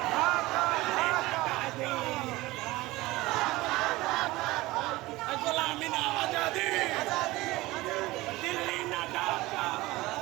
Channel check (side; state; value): left; quieter; 19.6 dB